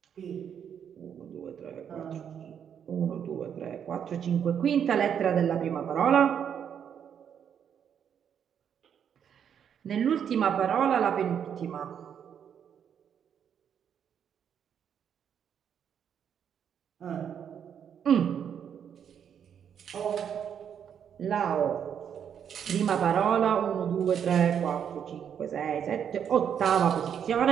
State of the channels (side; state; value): left; quieter; 8.3 dB